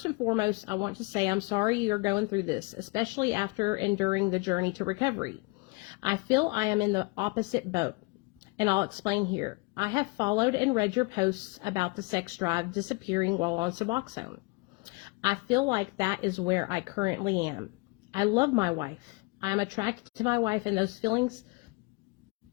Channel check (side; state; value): right; quieter; 27.2 dB